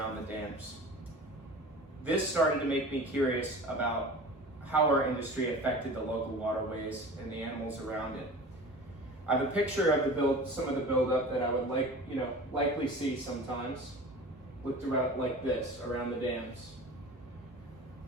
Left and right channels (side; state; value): both; normal; correlation 0.38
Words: the dams. This started to make me curious about how our industry affected the local waterways and the animals around it. I have a picture of some of the buildup that I would likely see sometimes, looked around like this around the dams.